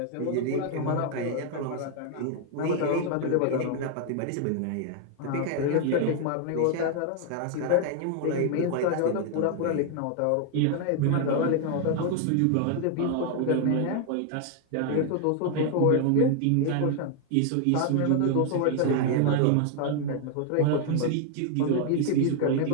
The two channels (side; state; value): both; different; correlation 0.00